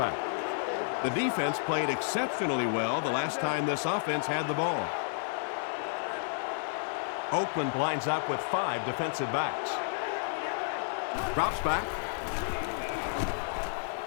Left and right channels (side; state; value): right; silent; digital silence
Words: The defense played exceptionally well the last time this offense had the ball. Oakland lines up with 5 defensive backs. Drops back.